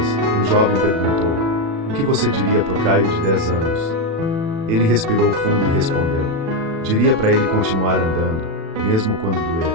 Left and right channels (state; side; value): late; left; 36 ms